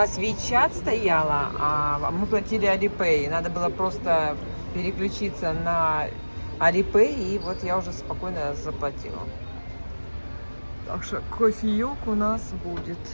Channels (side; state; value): both; inverted; correlation -1.00